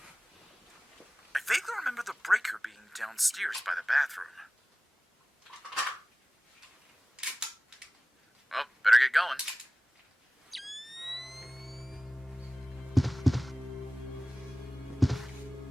I vaguely remember the breaker being downstairs by the bathroom. Well, better get going.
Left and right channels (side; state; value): both; normal; correlation 0.97